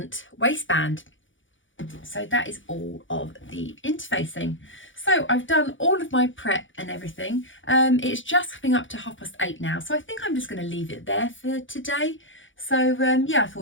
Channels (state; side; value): late; right; 0.56 ms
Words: waistband. So that is all of the interfacing. So I've done all of my prep and everything. It's just coming up to 8:30 now, so I think I'm just going to leave it there for today. So yeah, I